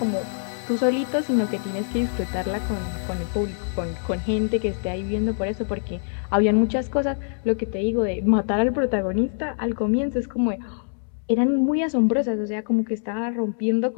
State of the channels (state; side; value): silent; right; digital silence